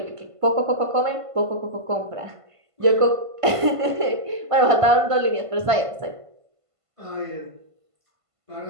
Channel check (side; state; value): left; late; 1.5 ms